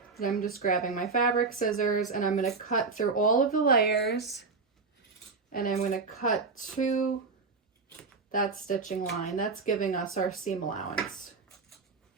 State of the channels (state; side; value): quieter; left; 4.5 dB